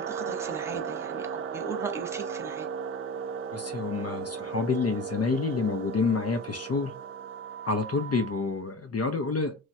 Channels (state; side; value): normal; both; correlation 0.30